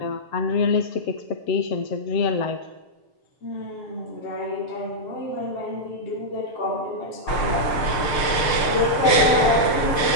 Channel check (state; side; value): late; right; 6.7 ms